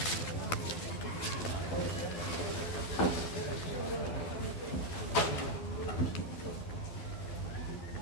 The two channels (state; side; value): late; right; 12 ms